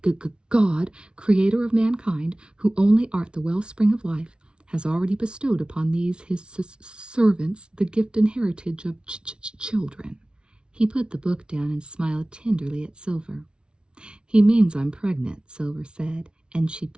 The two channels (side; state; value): left; late; 0.056 ms